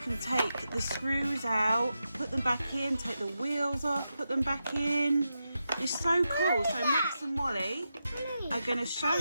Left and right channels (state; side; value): inverted; both; correlation -0.88